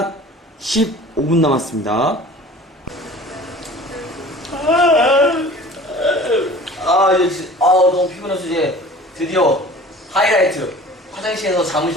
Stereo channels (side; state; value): both; normal; correlation 0.43